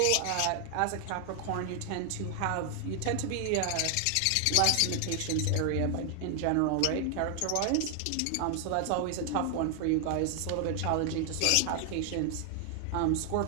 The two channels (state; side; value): different; both; correlation 0.00